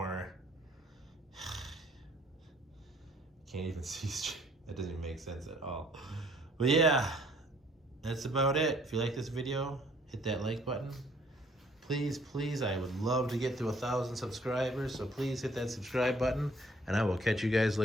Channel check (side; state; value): both; normal; correlation 0.60